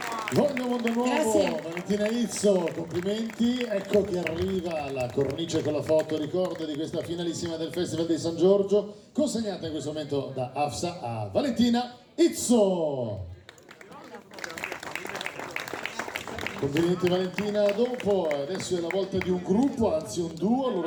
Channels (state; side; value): identical; both; correlation 1.00